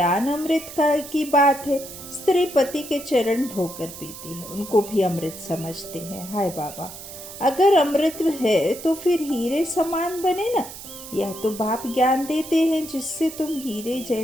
अमृत की बात है। स्त्री पति के चरण धोकर पीती है, उनको भी अमृत समझते हैं। हाय बाबा, अगर अमृत है तो फिर हीरे समान बने ना। यह तो बाप ज्ञान देते हैं जिससे तुम हीरे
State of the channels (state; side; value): noise; right; hiss, 13 dB below the sound